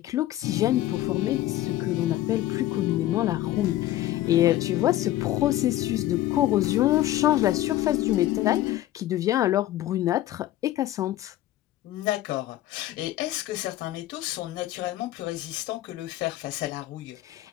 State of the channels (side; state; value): right; quieter; 14.3 dB